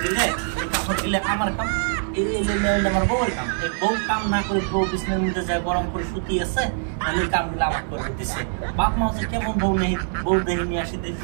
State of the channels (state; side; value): silent; left; digital silence